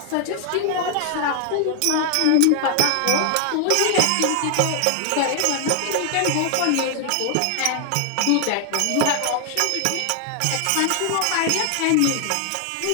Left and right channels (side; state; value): both; different; correlation 0.00